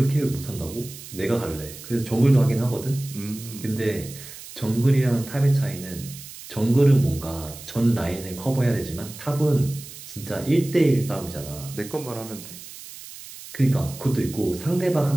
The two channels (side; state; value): right; noise; hiss, 15 dB below the sound